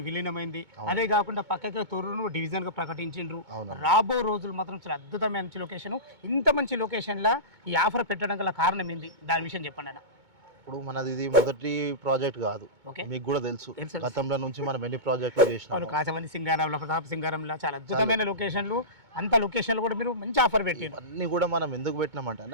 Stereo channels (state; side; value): late; left; 2.2 ms